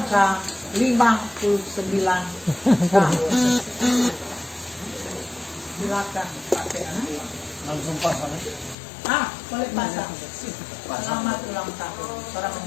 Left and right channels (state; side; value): drops out; right; at 8.8 s